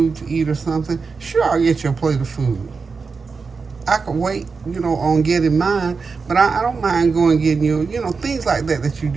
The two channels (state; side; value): quieter; left; 4.8 dB